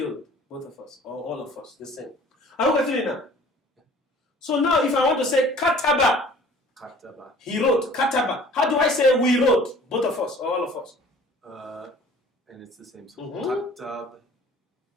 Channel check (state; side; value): normal; both; correlation 0.49